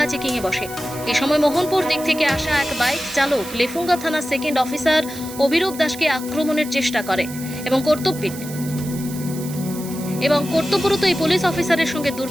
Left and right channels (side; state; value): right; noise; hiss, 13 dB below the sound